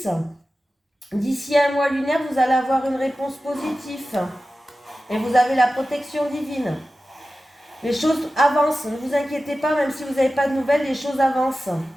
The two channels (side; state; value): both; normal; correlation 0.94